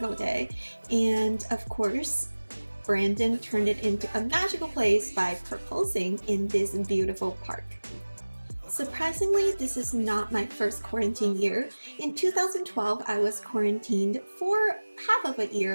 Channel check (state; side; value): inverted; both; correlation -1.00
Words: day. And of course, Brandon turned it into a magical place by proposing in this beautiful park. Surprisingly, this is not my first quarantine year. In 2012, I was quarantined for half of a